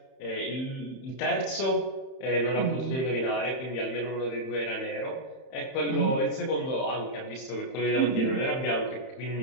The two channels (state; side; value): late; right; 31 ms